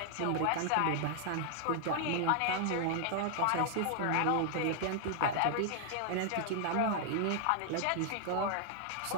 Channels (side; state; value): both; different; correlation 0.00